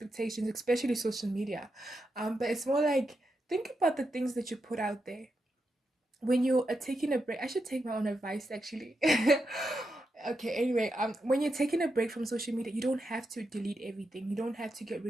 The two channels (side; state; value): both; normal; correlation 0.85